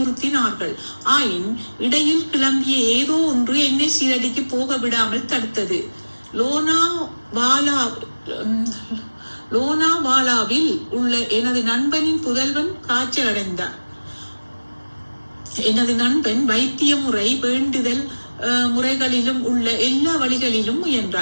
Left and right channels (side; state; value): both; inverted; correlation -1.00